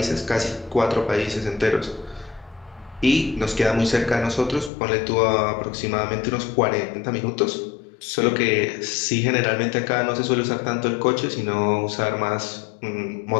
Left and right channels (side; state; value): right; drops out; at 4.7 s